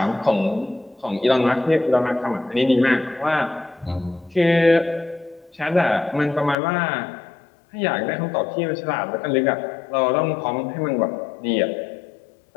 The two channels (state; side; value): drops out; right; at 6.6 s